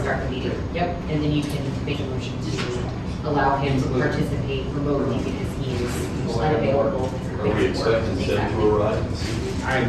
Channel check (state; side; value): identical; both; correlation 1.00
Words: start the meeting, yep, and then you can make a motion to allow him to participate remotely because he is unavailable. Are we expecting Seth to arrive? I